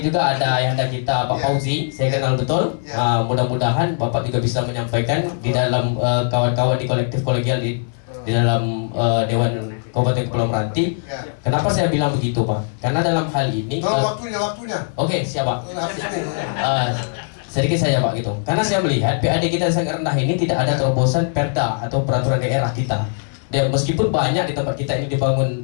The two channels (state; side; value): silent; right; 66 dB below the other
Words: juga ada ayahanda kita Pak Fauzi, saya kenal betul. Mudah-mudahan Bapak juga bisa menyampaikan di dalam kawan-kawan di kolektif kolegial di dalam Dewan Kabupaten Kepulauan Meranti. Kenapa saya bilang begitu, Pak? Karena dalam hal ini waktunya. Oke, siap, Pak. Sedikit saja, Pak, gitu. Karena saya melihat PAD kita yang sangat rendah ini tidak ada terobosan perda atau peraturan daerah kita. Dan meskipun banyak di tempat kita ini